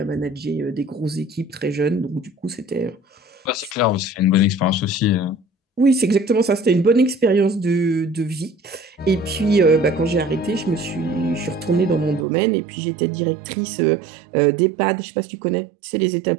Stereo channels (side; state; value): left; drops out; at 12.2 s